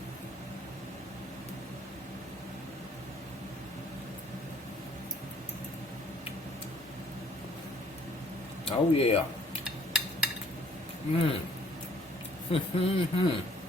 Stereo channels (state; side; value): normal; both; correlation 0.59